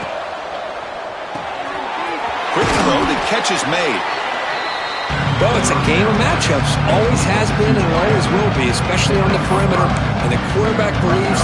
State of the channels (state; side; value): identical; both; correlation 1.00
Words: Quick throw, the catch is made. Well, it's a game of matchups. Always has been and always will be, especially on the perimeter. And the quarterback